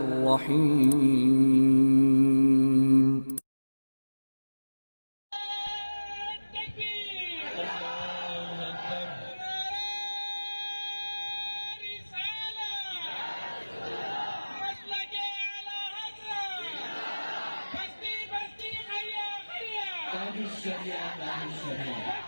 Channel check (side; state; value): both; inverted; correlation -1.00